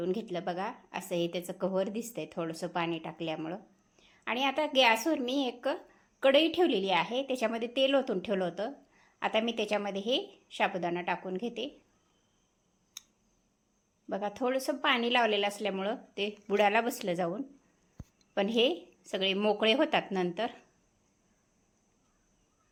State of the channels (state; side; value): identical; both; correlation 1.00